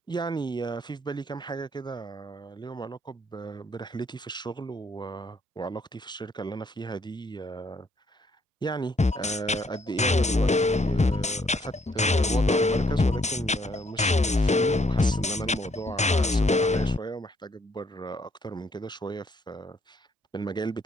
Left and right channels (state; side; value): normal; both; correlation 0.69